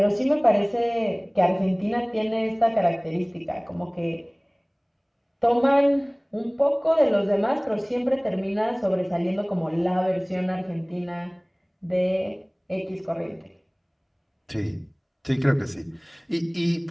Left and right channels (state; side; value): identical; both; correlation 1.00